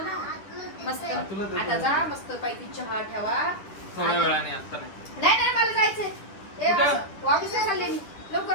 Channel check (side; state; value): right; late; 10 ms